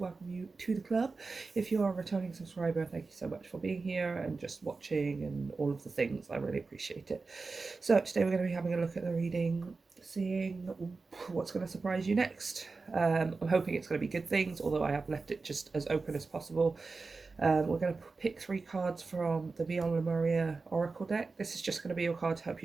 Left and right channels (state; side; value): quieter; left; 4.1 dB